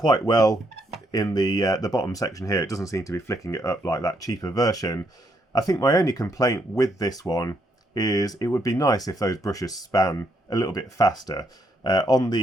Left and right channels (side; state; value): both; normal; correlation 0.75